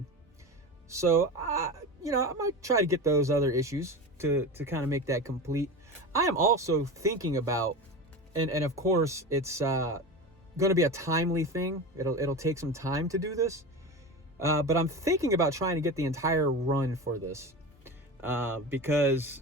So I might try to get those other issues to kind of make that complete. I am also thinking about, and of course it's going to be a timely thing. It'll take some time to do this, but I'm thinking about trying to get the entire run for this because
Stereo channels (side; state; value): both; normal; correlation 0.26